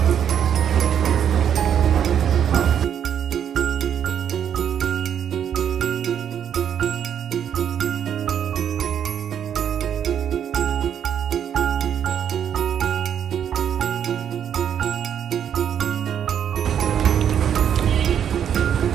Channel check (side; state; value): left; quieter; 8.9 dB